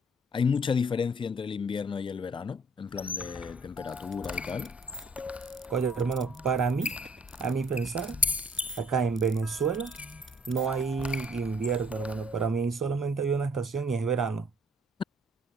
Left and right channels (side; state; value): both; normal; correlation 0.59